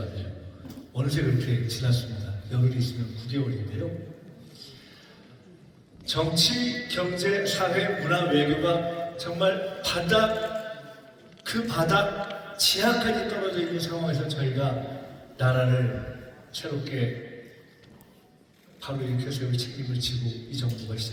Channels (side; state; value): both; identical; correlation 1.00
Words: 어느새 그렇게 지났습니다. 열흘이 있으면 9개월인데요. 정치, 경제, 사회, 문화, 외교가 정말 그 바닥 지하까지 떨어져 있는 상황에서 저희가 나라를 새롭게 바로 일으켜 세울 책임을 지고 이 정부가